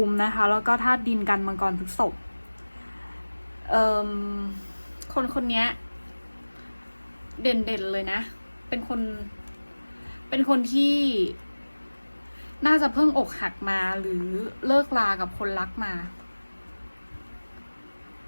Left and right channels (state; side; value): inverted; both; correlation -1.00